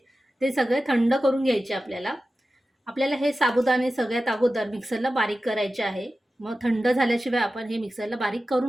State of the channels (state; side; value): normal; both; correlation 0.94